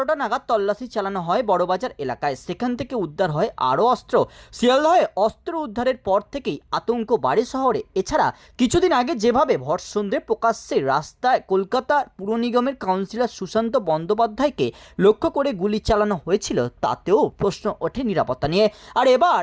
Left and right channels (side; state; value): both; identical; correlation 1.00